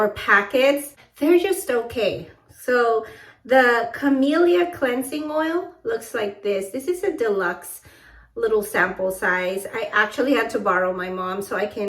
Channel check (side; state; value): both; identical; correlation 1.00